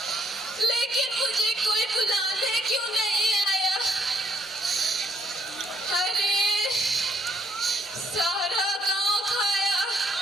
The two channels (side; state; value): both; normal; correlation 0.71